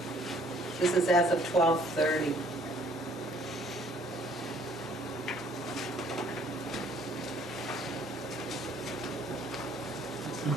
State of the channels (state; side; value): normal; both; correlation 0.60